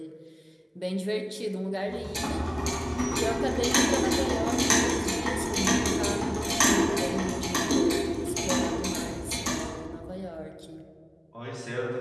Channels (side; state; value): both; identical; correlation 1.00